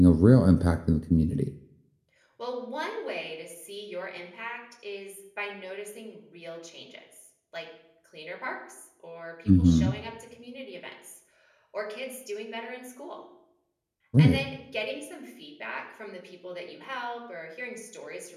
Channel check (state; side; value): identical; both; correlation 1.00